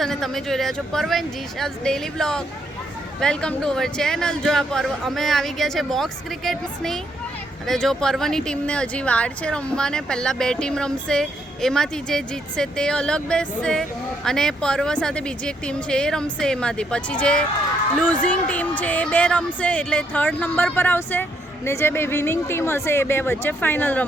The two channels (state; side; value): normal; both; correlation 0.74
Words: અને તમે જોઈ રહ્યા છો પર્વ એન્ડ જીશાઝ daily blog. Welcome to our channel. જો આ પર્વ અમે આવી ગયા છે બોક્સ ક્રિકેટ્સની. અને જો પર્વની ટીમને હજી વાર છે રમવાને. પહેલાં 2 ટીમ રમશે, એમાંથી જે જીતશે તે અલગ બેસશે અને પર્વ સાથે બીજી એક ટીમ છે એ રમશે એમાંથી. પછી જે લૂઝિંગ ટીમ છે એ 2 રમશે એટલે 3rd નંબર પર આવશે ને જે 2 વિનિંગ ટીમ હશે એ 2 વચ્ચે ફાઇનલ